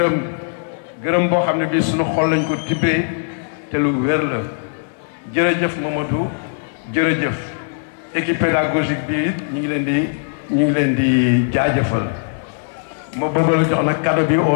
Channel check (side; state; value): right; silent; 60 dB below the other